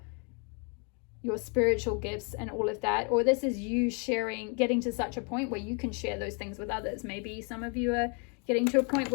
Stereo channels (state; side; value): quieter; right; 36.5 dB